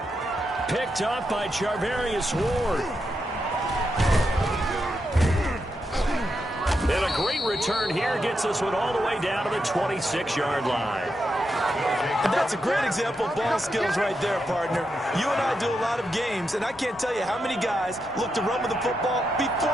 Picked up by Charvarius Ward. And a great return here gets us one all the way down to the 26-yard line. And that's a great example of ball skills right there, partner. You and I do a lot of games, and I can't tell you how many guys look to run with the football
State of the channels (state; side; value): normal; both; correlation 0.85